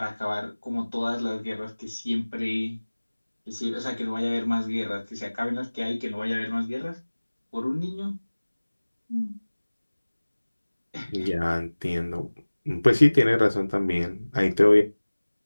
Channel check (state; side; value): inverted; both; correlation -1.00